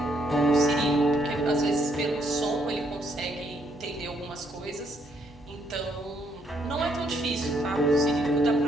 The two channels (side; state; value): both; normal; correlation 0.72